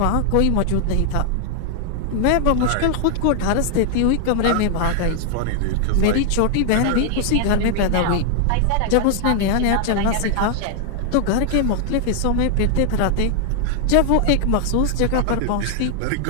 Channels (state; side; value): different; both; correlation 0.00